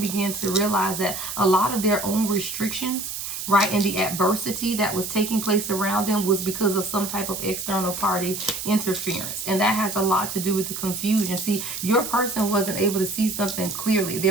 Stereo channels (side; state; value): right; noise; hiss, 6 dB below the sound